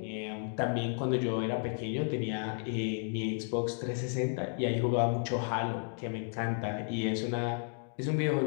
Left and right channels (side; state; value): right; silent; 56 dB below the other